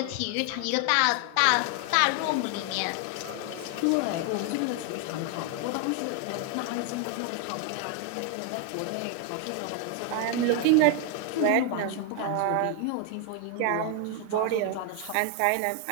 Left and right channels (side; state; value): both; different; correlation 0.01